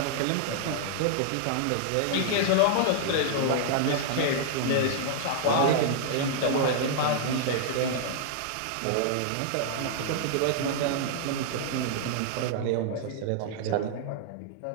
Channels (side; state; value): both; different; correlation -0.01